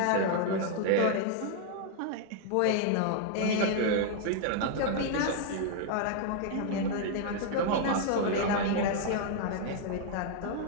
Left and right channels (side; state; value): both; different; correlation 0.00